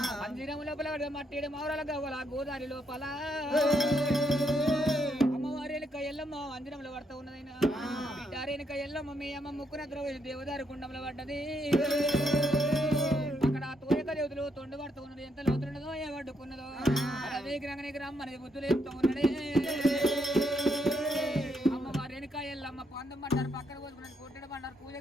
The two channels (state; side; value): normal; both; correlation 0.76